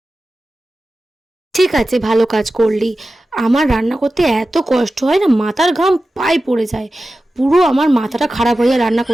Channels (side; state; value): both; normal; correlation 0.94